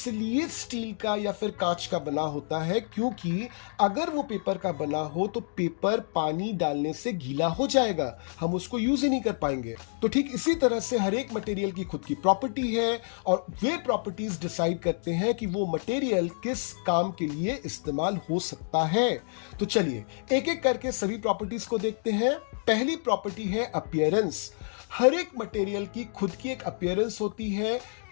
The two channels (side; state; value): right; silent; digital silence